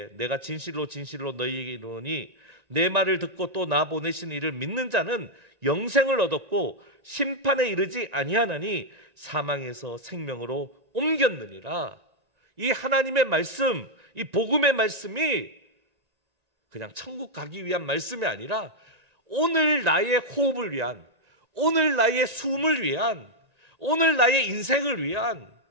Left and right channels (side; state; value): left; late; 1.9 ms